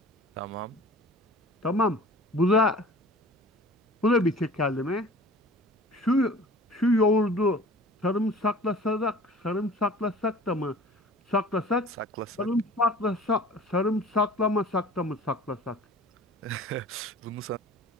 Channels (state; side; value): normal; both; correlation 0.43